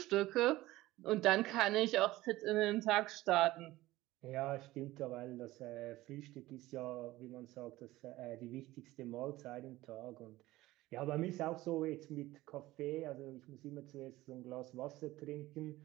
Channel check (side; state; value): left; quieter; 17.6 dB